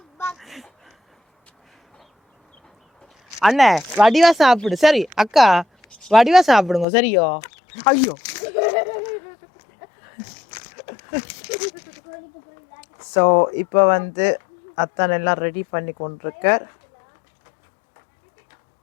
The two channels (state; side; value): drops out; right; at 6.9 s